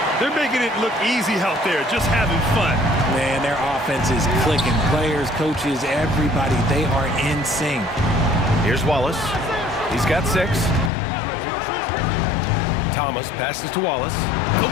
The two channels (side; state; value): right; drops out; at 10.9 s